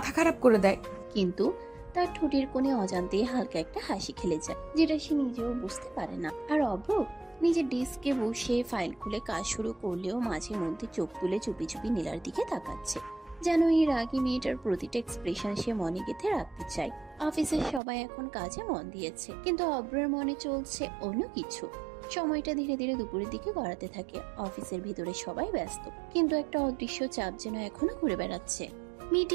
খারাপ করে দেয়। কিন্তু তার ঠোঁটের কোণে অজান্তে হালকা একটা হাসি খেলে যায়, যেটা সে নিজেও বুঝতে পারে না। আর অব্র নিজের ডেস্কে বসে ফাইল খুলে কাজ শুরু করলেও মাঝে মধ্যে চোখ তুলে চুপি চুপি নীলার দিকে তাকাচ্ছে। যেন এই রাগী মেয়েটার প্রতিটা এক্সপ্রেশন সে মনে গেঁথে রাখতে চায়। অফিসের সবাই এখন কাজে মন দিয়েছে, কিন্তু অব্রের মনে চলছে অন্য কিছু। সময়টা ধীরে ধীরে দুপুরের দিকে গড়াতে থাকে। অফিসের ভিতরে সবাই ব্যস্ত, কিন্তু একটা অদৃশ্য চাপ যেন এখনো ঘুরে বেড়াচ্ছে।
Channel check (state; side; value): drops out; left; at 17.8 s